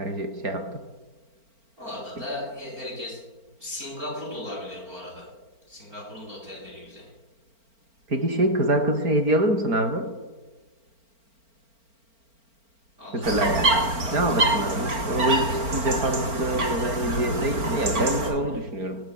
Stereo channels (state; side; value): late; left; 4.4 ms